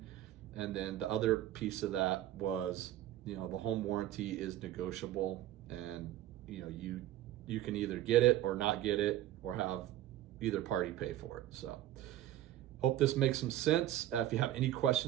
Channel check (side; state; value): left; quieter; 13.3 dB